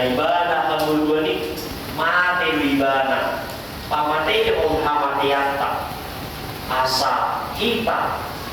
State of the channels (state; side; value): identical; both; correlation 1.00